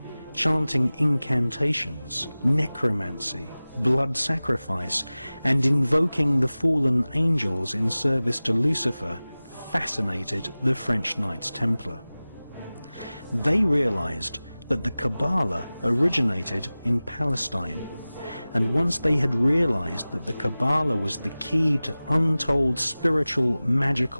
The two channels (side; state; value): both; inverted; correlation -0.98